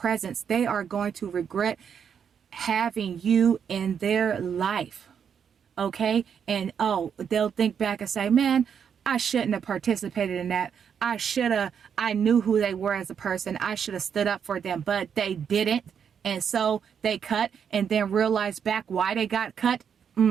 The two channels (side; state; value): left; quieter; 7.5 dB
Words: They are going to regret having you in their life. Okay? And they'll think back and say, man, I shouldn't have participated in that. I knew who they were as a person. I should have stood up for them, but they didn't. And so they cut, and then realized back why they got cut.